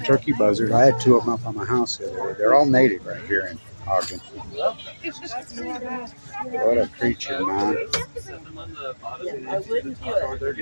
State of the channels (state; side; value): inverted; both; correlation -1.00